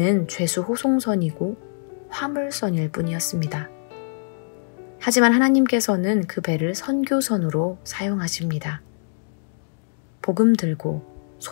죄수 호송선이고 화물선일 뿐이었습니다. 하지만 하나님께서는 그 배를 선교선으로 사용하십니다. 복음 들고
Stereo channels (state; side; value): silent; right; digital silence